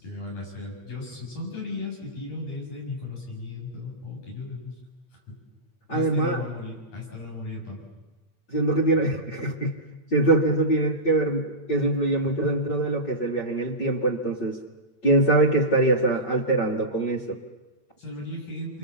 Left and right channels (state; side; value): late; right; 8.7 ms